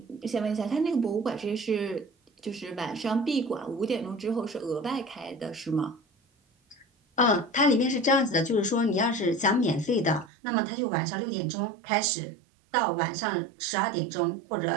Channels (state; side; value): drops out; left; at 10.3 s